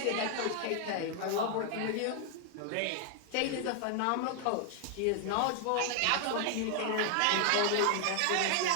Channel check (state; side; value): different; both; correlation 0.00